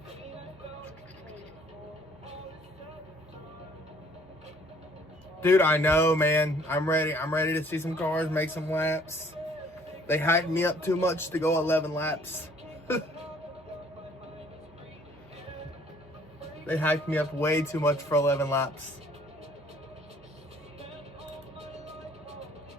Dude, I know, man. I'm ready. I'm ready to see some cars, make some laps. They hyped me up too much to go 11 laps. They hyped me up way too much for 11 laps.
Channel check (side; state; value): both; normal; correlation 0.59